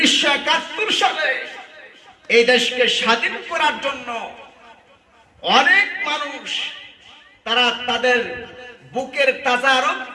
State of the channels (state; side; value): identical; both; correlation 1.00